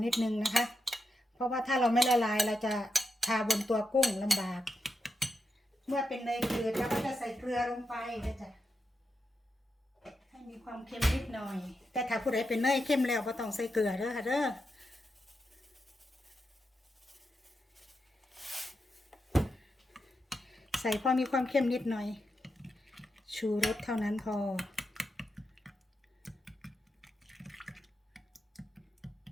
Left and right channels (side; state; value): both; normal; correlation 0.86